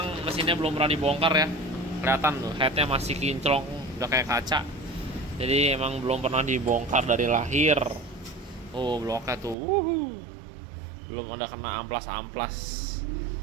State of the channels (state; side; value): drops out; left; at 9.6 s